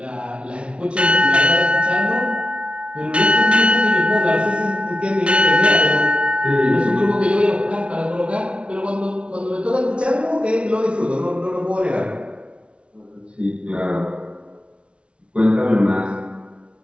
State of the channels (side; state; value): left; late; 0.059 ms